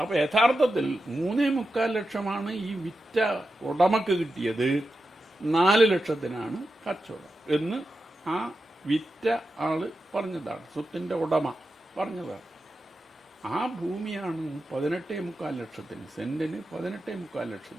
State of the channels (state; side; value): normal; both; correlation 0.90